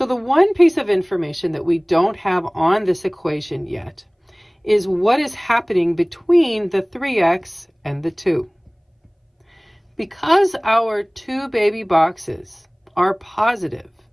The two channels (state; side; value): identical; both; correlation 1.00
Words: the one piece of information that we don't have on this equation yet is what is happening between the 3x and the 2. Because our 2 baby boxes are positive,